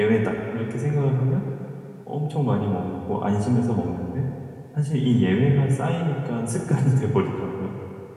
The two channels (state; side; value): identical; both; correlation 1.00